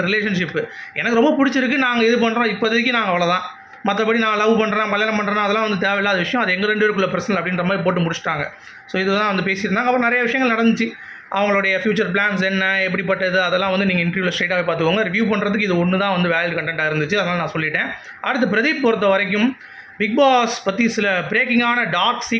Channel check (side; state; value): both; identical; correlation 1.00